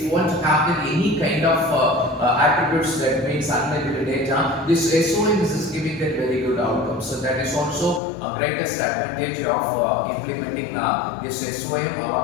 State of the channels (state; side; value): drops out; right; at 8.0 s